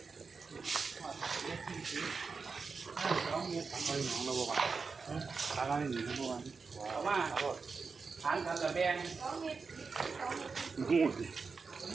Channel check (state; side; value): quieter; left; 4.8 dB